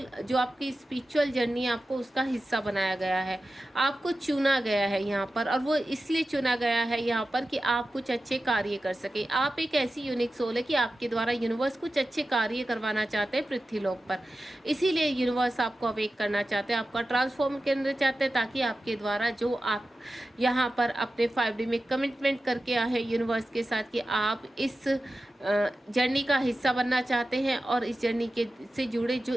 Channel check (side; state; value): both; normal; correlation 0.93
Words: जो आपकी स्पिरिचुअल जर्नी है आपको उसका हिस्सा बनाया गया है, आपको चुना गया है यहाँ पर, और वो इसलिए चुना गया है यहाँ पर कि आप कुछ अच्छे कार्य कर सके। आप एक ऐसी यूनिक सोल है कि आपके द्वारा यूनिवर्स कुछ अच्छे कार्य करवाना चाहते हैं पृथ्वी लोक पर, इसीलिए यूनिवर्स आपको अवेक करना चाहते हैं, आपका ट्रांसफॉर्म करना चाहते हैं, ताकि आपके द्वारा जो आप यहाँ पर अपने 5D में कमिटमेंट करके आए हैं यूनिवर्स के साथ कि आप इस जर्नी का हिस्सा बनना चाहते हैं और इस जर्नी के से जुड़े जो